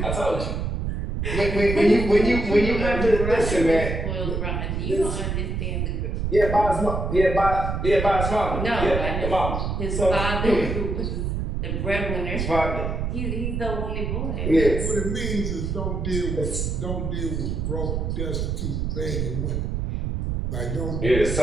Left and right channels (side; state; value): right; noise; rumble, 2 dB below the sound